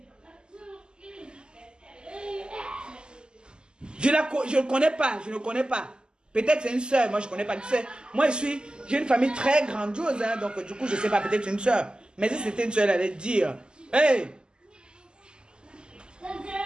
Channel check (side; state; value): left; late; 0.047 ms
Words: Je ne connais pas, je ne connais pas. Peut-être c'est une soeur, moi je ne connais pas. Tu sais, moi j'ai une famille très grandiose, hein, donc du coup je ne sais pas, peut-être c'est une soeur. Mais si c'était une soeur, elle allait dire, hey!